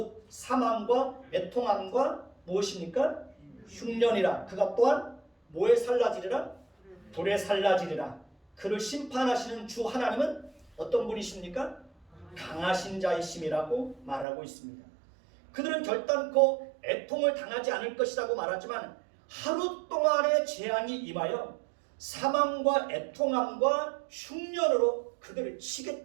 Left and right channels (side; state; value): left; drops out; at 14.2 s